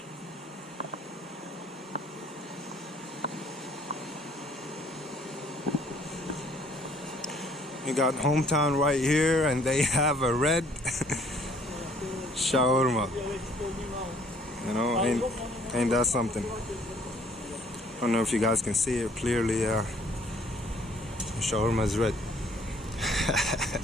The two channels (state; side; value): normal; both; correlation 0.60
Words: You got Hometown right here, and they have a red shawarma. You know, ain't that something? I don't know if you guys can see it clearly. Shawarma is red.